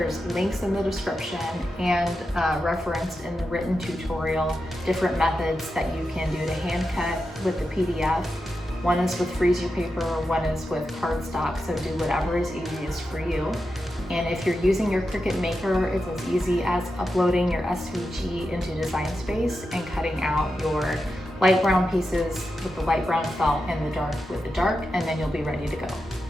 links in the description and referenced in the written tutorial, different methods that you can do to hand cut with the PDF. One is with freezer paper, one is with cardstock, so do whatever is easiest for you. And if you're using your Cricut maker, it's as easy as uploading your SVG into Design Space and cutting out your light brown pieces with the light brown felt and the dark with the dark, and then you'll be ready to go.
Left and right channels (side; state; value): both; normal; correlation 0.89